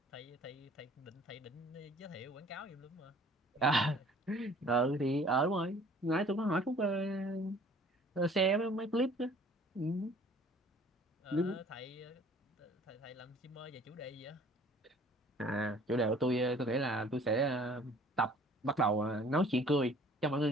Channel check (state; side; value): normal; both; correlation 0.53